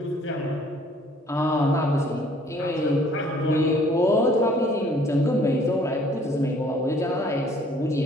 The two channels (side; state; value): both; normal; correlation 0.58